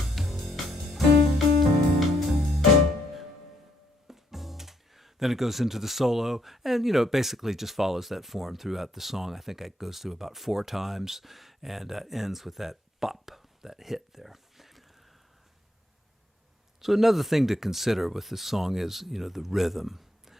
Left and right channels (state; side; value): normal; both; correlation 0.73